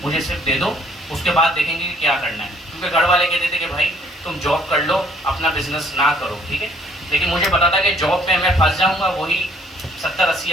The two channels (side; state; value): both; normal; correlation 0.61